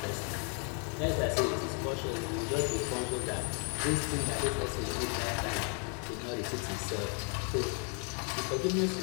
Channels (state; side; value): quieter; right; 39.5 dB